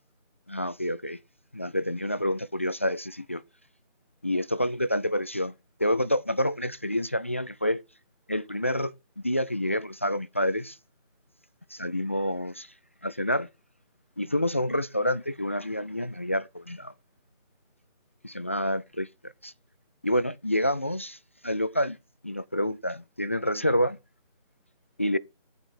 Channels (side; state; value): both; inverted; correlation -0.77